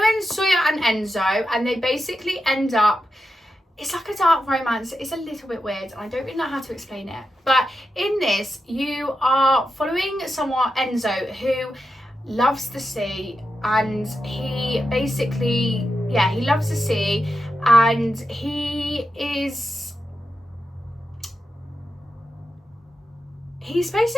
Sawyer and Enzo, and they basically end up, it's like a dark romance. It's a little bit weird, and I don't really know how to explain it. But in this, you are following someone, Enzo, who loves the sea, and he basically, yeah, he loves the sea, and he's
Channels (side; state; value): both; normal; correlation 0.88